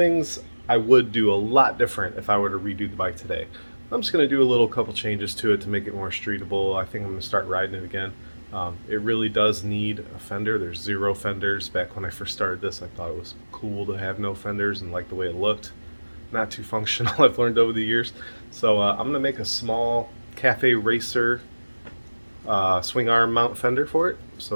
I would do a lot different if I were to redo the bike today. I'm just going to do a couple changes to it to make it more streetable. I think I'm going to start riding it again. It really does need a fender. There's 0 fenders. Back when I first started this, I thought it was cool to have no fenders and like the way it looked. Not too functional, I've learned over the years. So I'm going to make a small Cafe Racer swing arm mount fender for it.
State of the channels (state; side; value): inverted; both; correlation -1.00